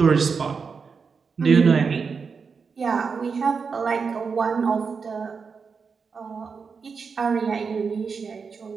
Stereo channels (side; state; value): left; quieter; 5.4 dB